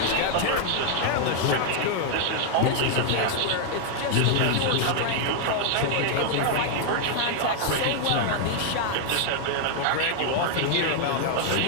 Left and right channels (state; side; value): different; both; correlation 0.00